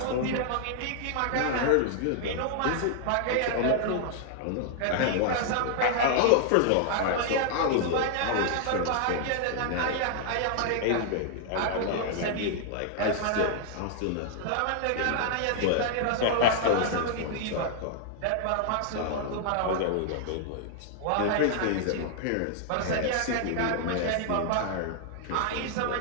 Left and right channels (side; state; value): both; different; correlation 0.00